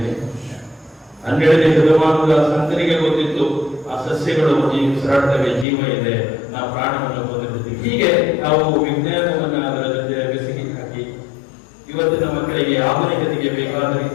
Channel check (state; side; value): drops out; right; at 5.7 s